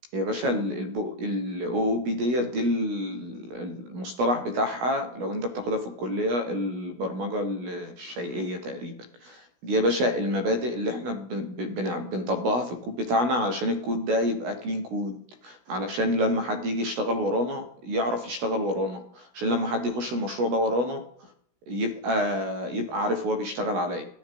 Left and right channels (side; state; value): left; late; 16 ms